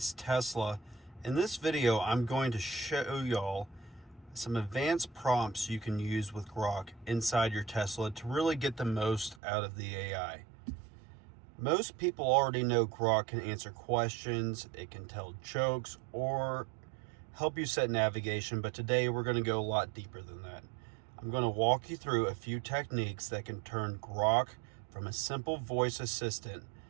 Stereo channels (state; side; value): drops out; left; at 9.4 s